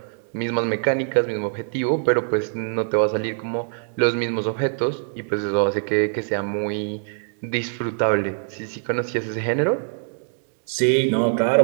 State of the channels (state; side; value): silent; left; digital silence